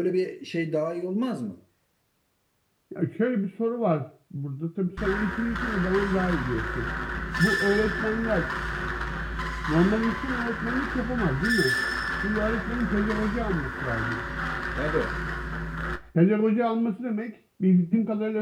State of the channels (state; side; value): identical; both; correlation 1.00